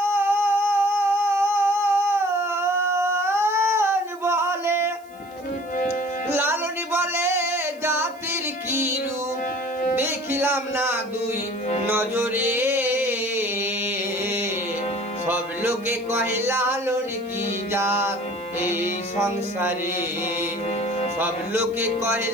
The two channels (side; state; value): right; noise; hiss, 28 dB below the sound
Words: লালন বলে জাতির কি রূপ, দেখিলাম না দুই নজরে। সব লোকে কহে লালন কি জাত এই সংসারে, সব লোকে কহে